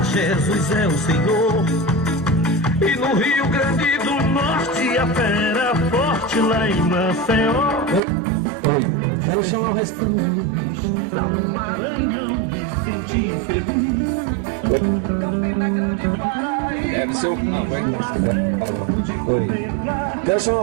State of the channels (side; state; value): left; drops out; at 8.0 s